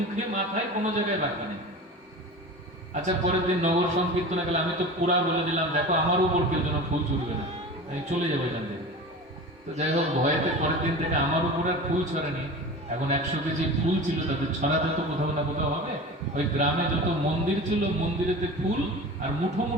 মাথায়, কোনো জায়গায় বাকি নেই। আচ্ছা, পরের দিন নগর সংকীর্তনে গেলে আমি তো পুরা বলে দিলাম, দেখো আমার উপর কেউ যেন ফুল ছুটবে না, আমি চলে যাবো এখান থেকে। তো যাই হোক, ভয়েতে পরের দিন থেকে আমার উপর আর ফুল ছড়ানি। এখন 100 কেজি ফুল ছিল, তাদের ছড়াতে তো কোথাও না কোথাও হবে। ওই গ্রামে যত মন্দির ছিল, মন্দিরেতে ফুল আর মুঠো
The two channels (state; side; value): normal; both; correlation 0.33